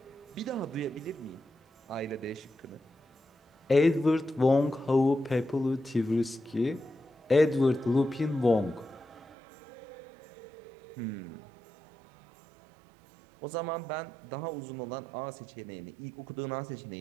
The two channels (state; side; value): drops out; left; at 9.2 s